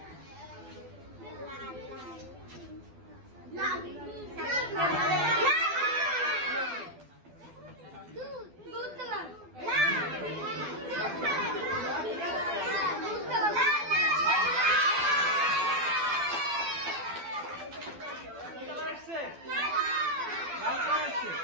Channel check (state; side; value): late; left; 12 ms